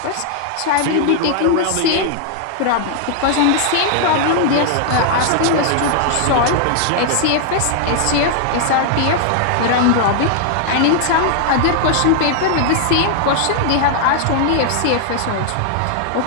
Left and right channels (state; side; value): different; both; correlation 0.00